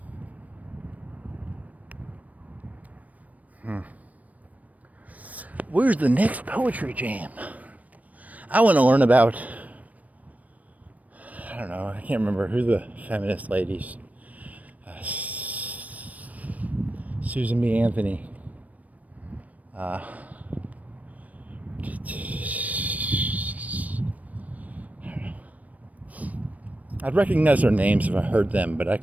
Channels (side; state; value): left; late; 0.071 ms